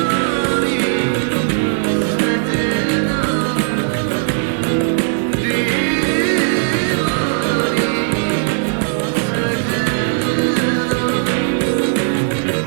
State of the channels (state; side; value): silent; left; 68 dB below the other